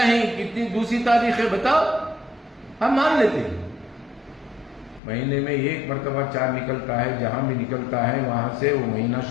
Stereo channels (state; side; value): drops out; right; at 5.0 s